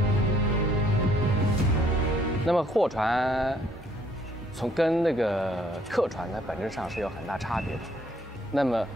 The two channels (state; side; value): normal; both; correlation 0.65